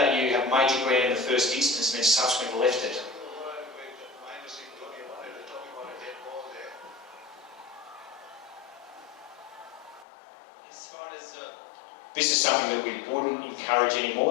you have made your ground in the first instance and then subsequently left it. As far as This is something that we wouldn't encourage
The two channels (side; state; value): right; drops out; at 10.1 s